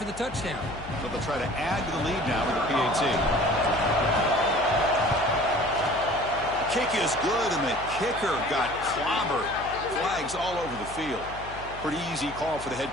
the touchdown. So they'll try to add to the lead now with the PAT. Kick is good, and the kicker got clobbered. Flags all over the field. Pretty easy call for the head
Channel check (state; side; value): noise; left; hum, 15 dB below the sound